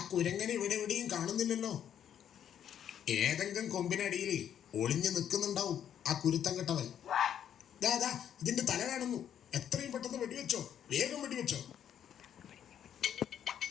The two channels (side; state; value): right; quieter; 9.5 dB